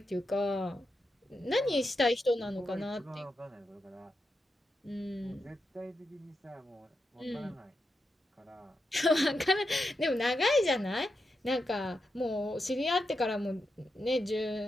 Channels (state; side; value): normal; both; correlation 0.86